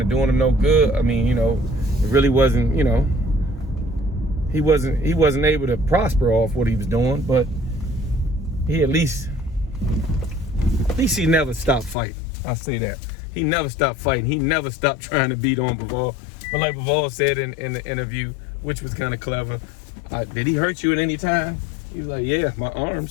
of doing him no good. I mean, you know, it really wasn't, you know, he wasn't able to prosper off what he was doing, but he at least he never stopped fighting. I'll say that. He never stopped fighting. He never stopped trying to beat on Bivol. But like Bivol said in the interview, which was kind of clever, did he hurt you at any time? He was like, yeah, my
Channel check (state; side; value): drops out; right; at 12.0 s